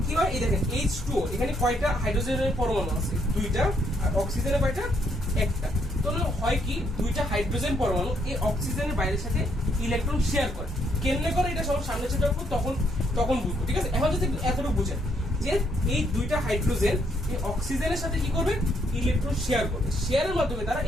কি হয়, এই দেখেন H2O, এখানে কয়টা হাইড্রোজেনের পরমাণু আছে 2টা, আর অক্সিজেনের কয়টা 1টা। তাহলে হয় কি 2টা হাইড্রোজেন পরমাণু এই অক্সিজেনের বাইরের সাথে ইলেকট্রন শেয়ার করে। কেমনে করে এটা সব সামনে সেটা তখন বুঝবো, ঠিক আছে। এখন যদি এতটুকু বুঝেন যে এই 2টা হাইড্রোজেন এই অক্সিজেনের সাথে কি করবে ইলেকট্রন শেয়ার করবে, শেয়ারের মাধ্যমে তারা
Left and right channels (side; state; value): both; normal; correlation 0.72